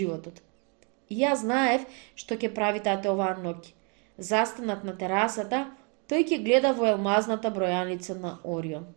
И јас знаев што ќе прави тате оваа ноќ. Застанат на терасата, тој ќе гледа во елмазната бројаница на Орион.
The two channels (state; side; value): quieter; left; 35.4 dB